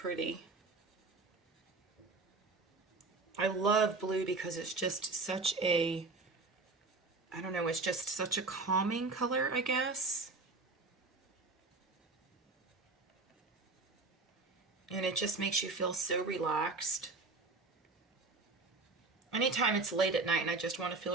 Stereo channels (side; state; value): left; quieter; 3.7 dB